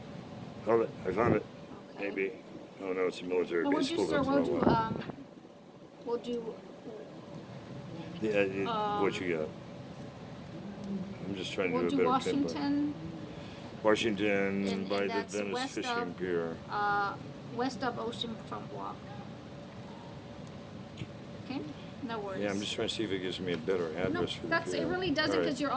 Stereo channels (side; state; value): both; identical; correlation 1.00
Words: Hold it. I found it. Okay. Maybe. Oh no, it's a military No, base. we'll do, sir, we'll do, What you got? I'm just trying to we'll do do a better pin drop. Washington And by the that's Venice west Fishing of- Pier. west of Oceanfront Walk. Okay, no worries. Yeah, I'm just trying to see if it gives me a better No, address for the that's, pier. it really doesn't, All right. because you're